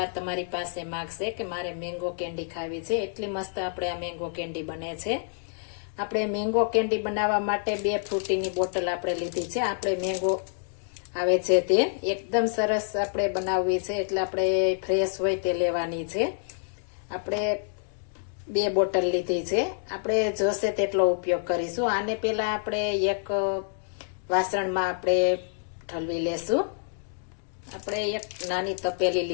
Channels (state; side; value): silent; right; digital silence